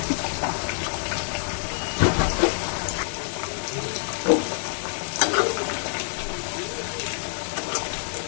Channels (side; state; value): right; silent; digital silence